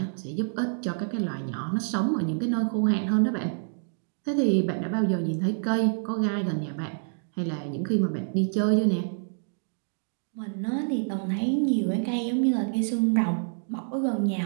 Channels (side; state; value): left; silent; digital silence